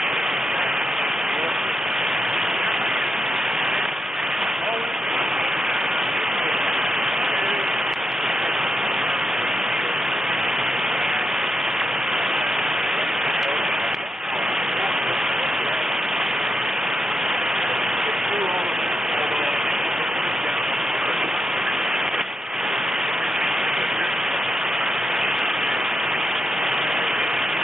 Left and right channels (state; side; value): normal; both; correlation 0.85